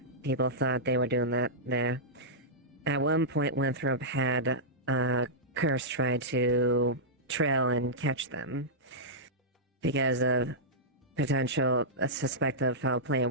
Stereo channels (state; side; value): normal; both; correlation -0.12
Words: People thought they were doing that there. At one point, Winthrop had Curse try to trail and catch them because of potential suspect of foul play and